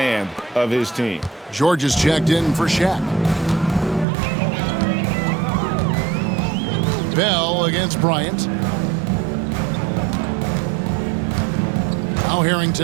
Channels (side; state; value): left; drops out; at 4.0 s